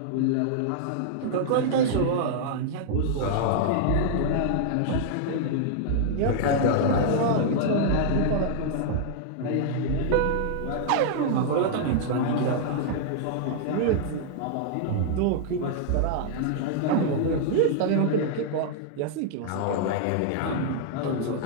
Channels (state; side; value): different; both; correlation -0.01